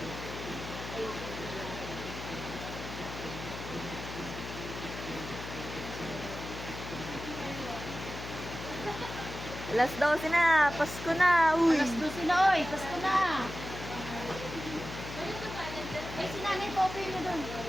Alas 12 na. Pasko na. Uy. Alas 12 na, oy. Pasko na. Ay, si Nanay Poppy mo doon.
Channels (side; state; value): left; noise; hum, 9 dB below the sound